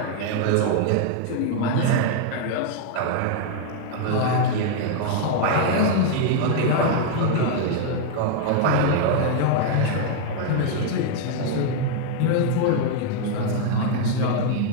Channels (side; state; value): both; different; correlation 0.00